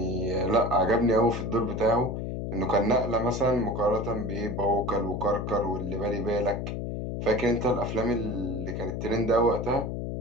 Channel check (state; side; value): noise; left; hum, 4 dB below the sound